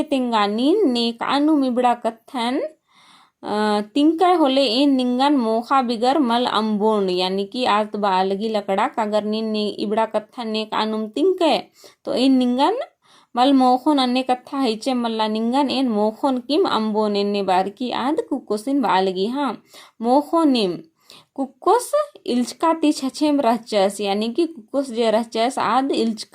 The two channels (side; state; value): both; identical; correlation 1.00